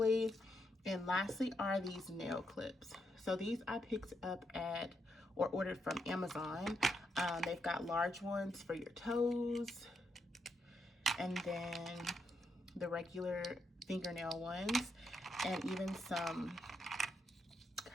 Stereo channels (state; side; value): normal; both; correlation 0.81